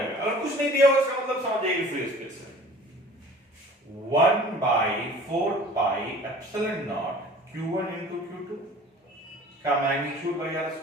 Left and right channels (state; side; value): normal; both; correlation 0.46